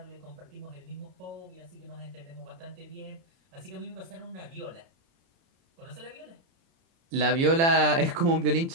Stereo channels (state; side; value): late; left; 30 ms